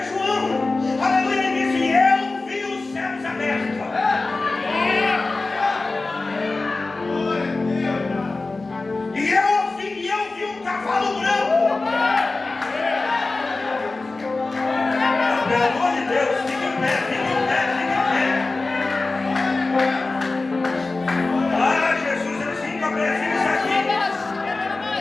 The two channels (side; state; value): right; quieter; 3.5 dB